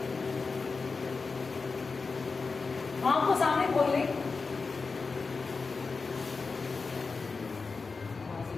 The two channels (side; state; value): right; quieter; 4.4 dB